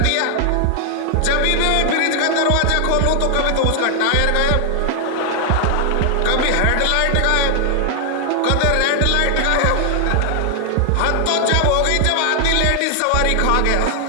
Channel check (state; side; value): different; both; correlation 0.00